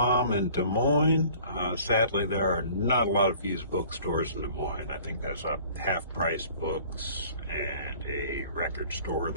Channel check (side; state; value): both; inverted; correlation -0.50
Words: in Des Moines. Sadly, there are not a lot of used bookstores in Des Moines. I think there's a half-price books and a record store